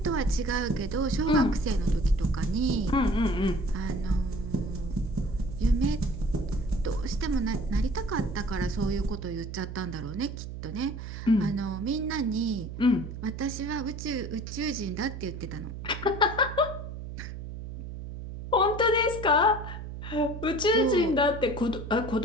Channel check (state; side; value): noise; right; hum, 9 dB below the sound